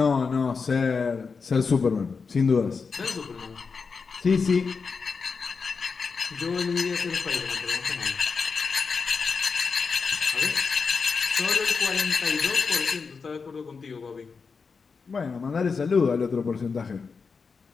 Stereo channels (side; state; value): right; quieter; 5.1 dB